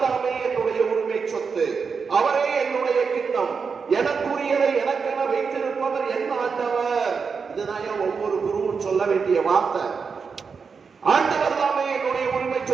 தாமே என்னுடைய உரிமை சொத்து, அவரே என்னுடைய கிண்ணம், எனக்குரியதை எனக்கென வைத்திருப்பவர் என் ஆண்டவர். இதுதான் ஒவ்வொரு குருவும் சொல்ல வேண்டிய வார்த்தை. ஆண்டவர் தாமே என்னுடைய உரிமை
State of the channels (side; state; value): left; quieter; 5.5 dB